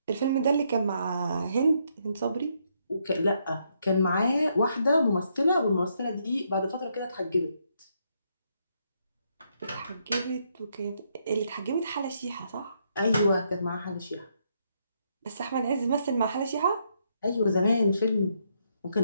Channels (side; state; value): both; inverted; correlation -0.75